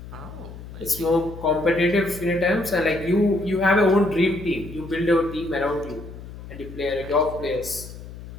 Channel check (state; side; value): noise; left; hum, 13 dB below the sound